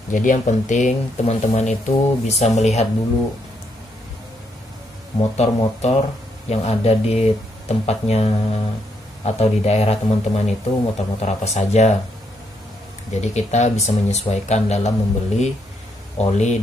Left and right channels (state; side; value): normal; both; correlation 0.76